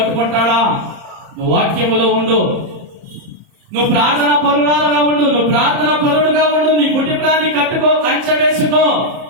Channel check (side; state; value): left; late; 30 ms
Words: నువ్వు వాక్యములో ఉండు, నువ్వు ప్రార్థన పరురాలుగా ఉండు, నువ్వు ప్రార్థన పరుడుగా ఉండు, నీ కుటుంబాన్ని కట్టుకో, కంచె వేసుకో.